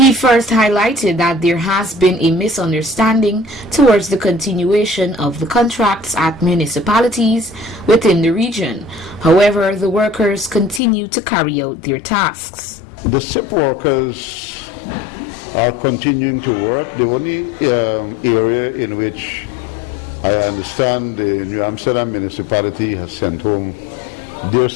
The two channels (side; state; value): right; drops out; at 10.8 s